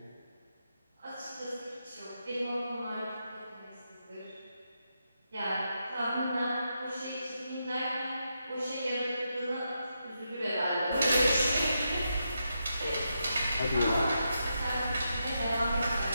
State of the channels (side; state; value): both; inverted; correlation -0.84